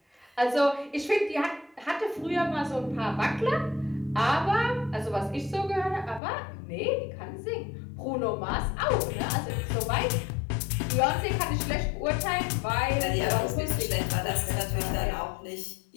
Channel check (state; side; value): drops out; right; at 6.2 s